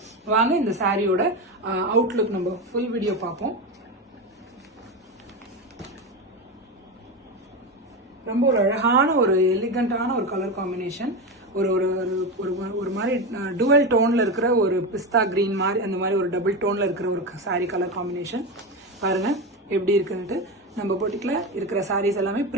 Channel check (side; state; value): both; normal; correlation 0.18